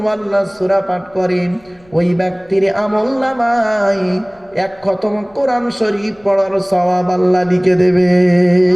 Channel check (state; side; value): noise; left; rumble, 30 dB below the sound